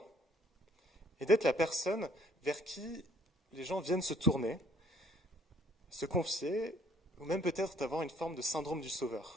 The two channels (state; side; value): normal; both; correlation 0.61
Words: et d'être la personne vers qui les gens viennent se tourner, se confier, ou même peut-être d'avoir une forme de syndrome du